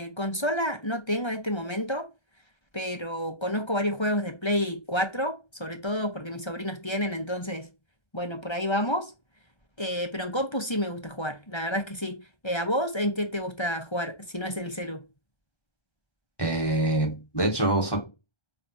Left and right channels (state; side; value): late; right; 1.3 ms